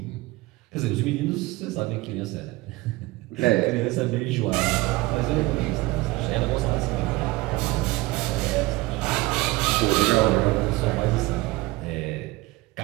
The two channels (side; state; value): left; quieter; 20.4 dB